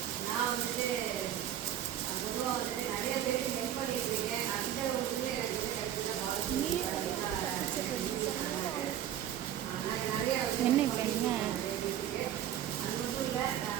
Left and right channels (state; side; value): quieter; left; 11.0 dB